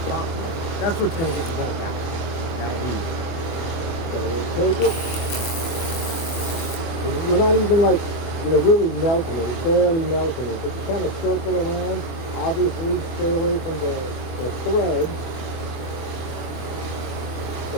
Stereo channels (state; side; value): late; right; 24 ms